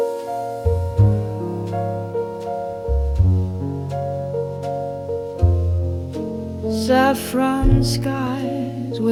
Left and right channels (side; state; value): both; identical; correlation 1.00